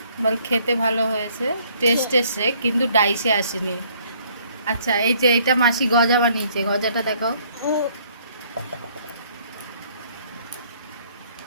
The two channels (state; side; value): inverted; both; correlation -0.63